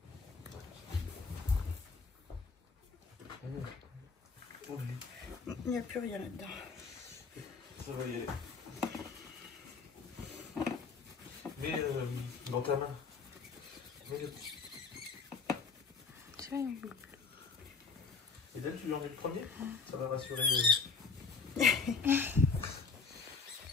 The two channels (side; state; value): right; quieter; 4.8 dB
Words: Oui. Il n'y a plus rien là-dedans. Ça va y aller. Mais dans ta main. Et là, tu lui en mets le premier? Ça va rassurer. Voilà.